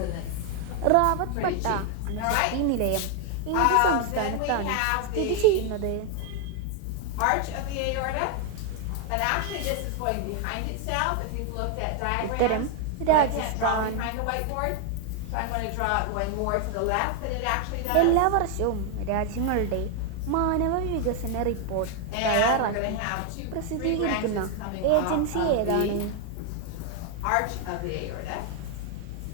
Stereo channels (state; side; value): different; both; correlation 0.01